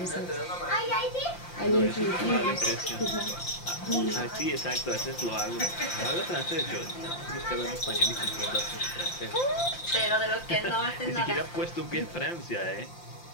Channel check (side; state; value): right; late; 5.8 ms